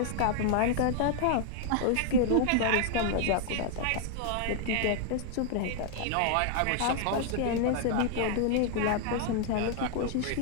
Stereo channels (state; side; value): different; both; correlation 0.00